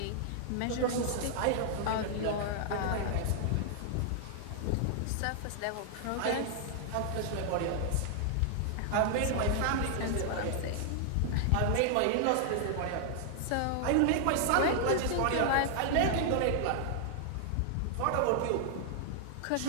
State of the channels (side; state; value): both; different; correlation 0.00